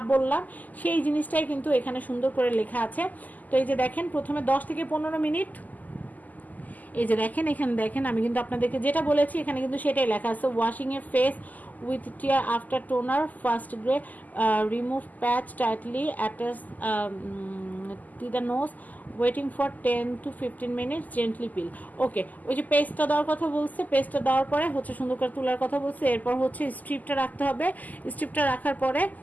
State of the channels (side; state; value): right; late; 0.081 ms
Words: বললাম সেই জিনিসটাই কিন্তু এখানে সুন্দর করে লেখা আছে। তো এই যে দেখেন, প্রথমে 10 থেকে 15 মিনিট, এই যে দেখেন এখানে দেখেন, আমি কিন্তু আপনাদেরকে যেটা বলেছি এখানে কিন্তু সেটাই লেখা আছে। Washing a face with tear after toner, first grey, remove patch tightly, attach to the nose, waiting for 10 to 15 minutes, gently peel. Okay, ওই যে পেস্টটা দেওয়ার কথা বলছে, পেস্টটা দেওয়ার পরে হচ্ছে সুন্দর করে তোলার কথা বলছে। এরপর হচ্ছে স্ট্রিপটা রাখতে হবে। স্ট্রিপটা রাখার পরে